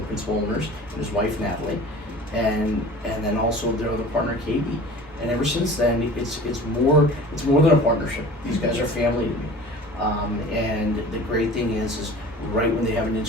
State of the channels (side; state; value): both; normal; correlation 0.41